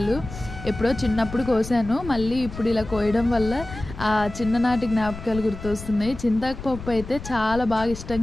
ఎప్పుడో చిన్నప్పుడు కోసాను, మళ్ళీ ఇప్పుడు ఇలా కోయడం వల్ల ఆ చిన్ననాటి జ్ఞాపకాలు గుర్తొస్తున్నాయి. చింతాకు పప్పు అయితే చాలా బాగా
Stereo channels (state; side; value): noise; left; rumble, 12 dB below the sound